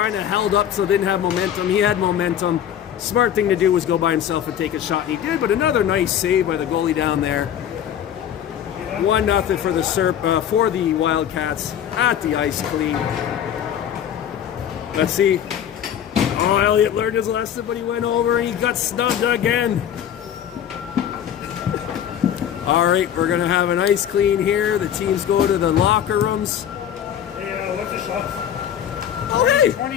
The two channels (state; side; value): quieter; right; 9.7 dB